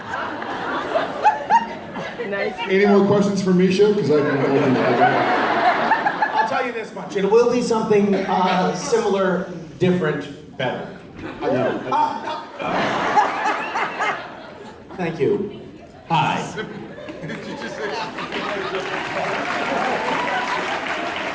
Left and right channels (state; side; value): identical; both; correlation 1.00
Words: Nice. Any more questions for Misha? Because I can. I'll tell you this much. It will be something similar, different, better. Thank you. Hi.